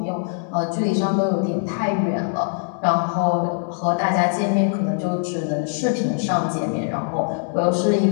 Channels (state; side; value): silent; right; 64 dB below the other